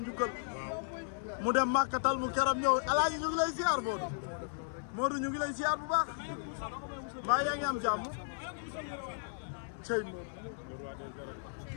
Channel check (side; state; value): right; silent; 54 dB below the other